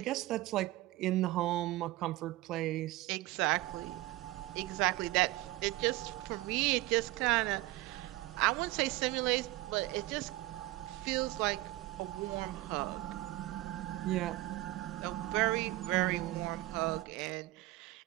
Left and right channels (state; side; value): quieter; left; 18.1 dB